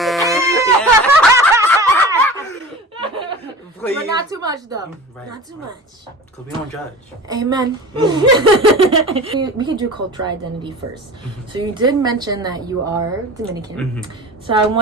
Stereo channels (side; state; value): both; normal; correlation 0.36